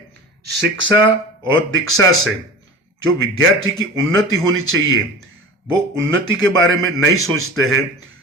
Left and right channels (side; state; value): both; normal; correlation 0.36